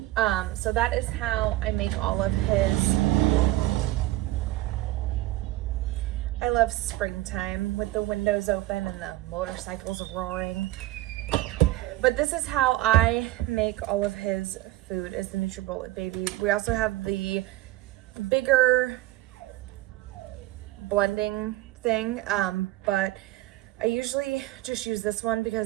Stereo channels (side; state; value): left; quieter; 17.0 dB